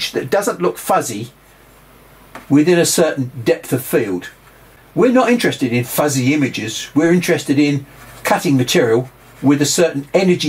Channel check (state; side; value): identical; both; correlation 1.00